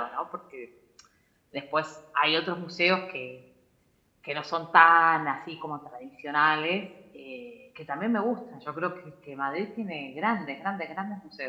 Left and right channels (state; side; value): identical; both; correlation 1.00